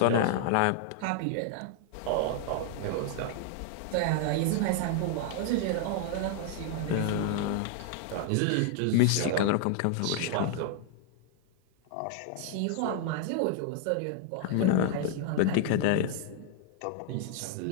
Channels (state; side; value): different; both; correlation 0.00